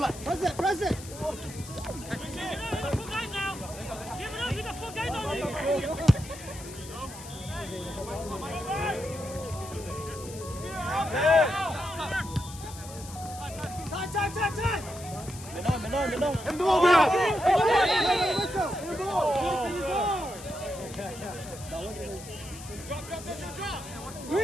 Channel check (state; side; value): noise; left; hiss, 15 dB below the sound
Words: lại. Press it. Mình đâu. Em đúng không?